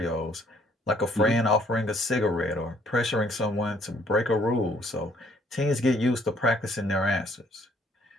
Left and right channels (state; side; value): normal; both; correlation 0.64